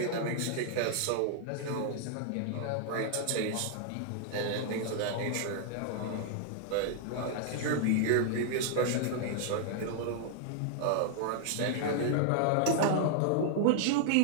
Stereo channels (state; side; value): different; both; correlation 0.00